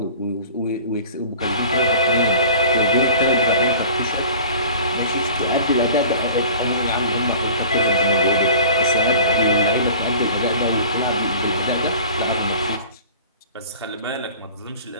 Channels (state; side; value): inverted; both; correlation -0.43